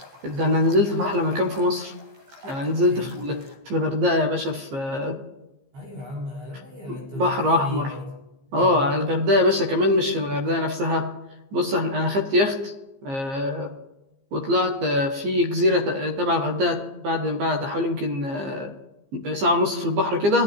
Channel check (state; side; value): late; left; 15 ms